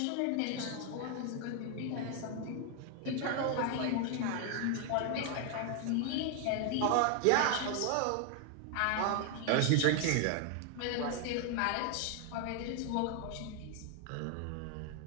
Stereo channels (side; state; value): both; different; correlation 0.00